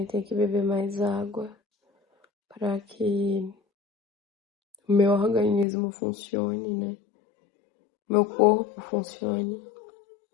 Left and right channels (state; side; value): drops out; right; at 5.7 s